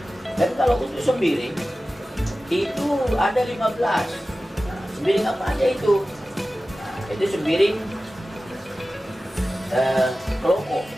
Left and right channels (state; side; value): normal; both; correlation 0.95